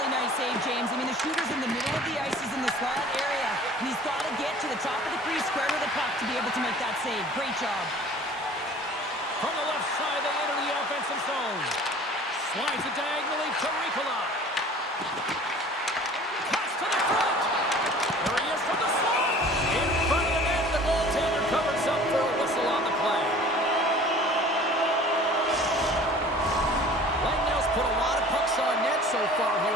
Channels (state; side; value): normal; both; correlation 0.46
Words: nice save, James. I mean, the shooter's in the middle of the ice. He's in the slot area. And he's got to get to the top of the crease, square to the puck to be able to make that save. Great job. From the left side, they enter the offensive zone. Slides it diagonally to Ricola. Pass to the front. There he is from the slot. In front of the net, the goaltender covers up for a whistle on the play. Lightnow's put a lot of pucks on net so far here